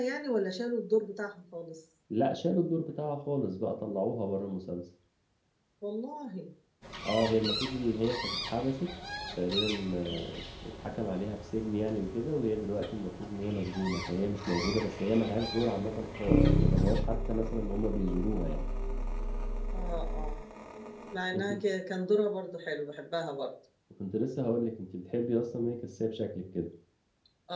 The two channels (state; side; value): identical; both; correlation 1.00